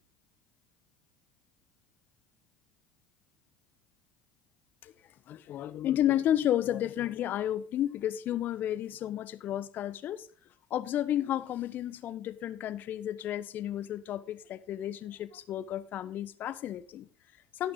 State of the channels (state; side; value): quieter; right; 11.5 dB